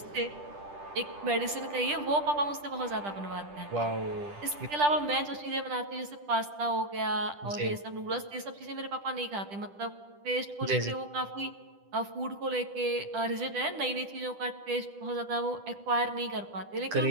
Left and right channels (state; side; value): late; left; 10 ms